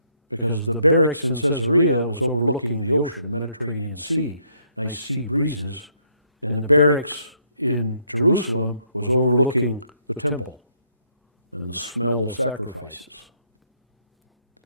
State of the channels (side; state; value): both; inverted; correlation -0.70